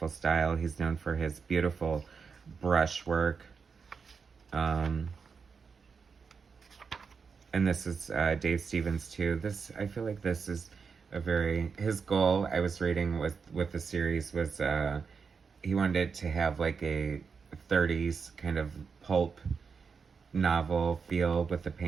style. He's known for his beautiful brushwork. And this is Dave Stevens too. I feel like this is his goal, I was reading with the series, was he wanted it to have like a 30s kind of pulp novel feel with the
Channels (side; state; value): left; quieter; 5.5 dB